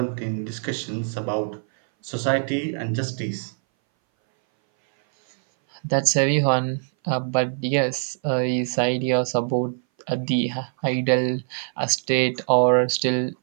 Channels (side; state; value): left; silent; 60 dB below the other